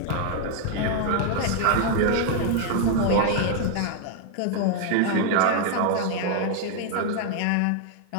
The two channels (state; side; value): different; both; correlation 0.00